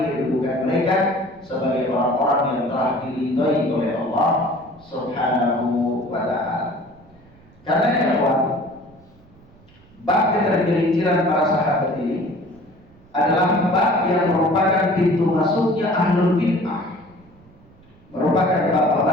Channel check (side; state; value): right; noise; rumble, 27 dB below the sound